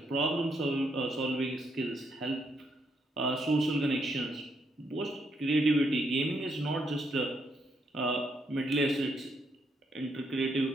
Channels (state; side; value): normal; both; correlation 0.76